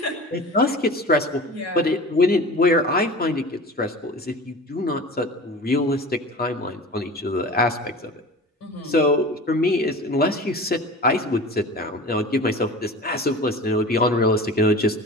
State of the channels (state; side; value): normal; both; correlation 0.36